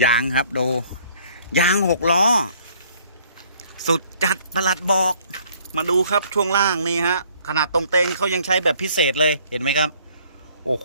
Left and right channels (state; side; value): inverted; both; correlation -0.60